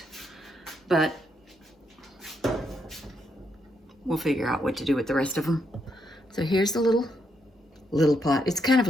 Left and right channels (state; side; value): normal; both; correlation 0.78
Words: but we'll figure out what to do with the rest of them. So here's the little pot. It's kind of